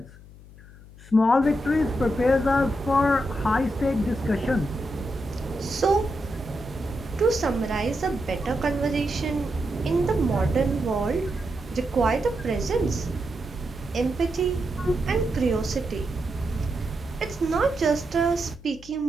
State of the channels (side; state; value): left; noise; hum, 20 dB below the sound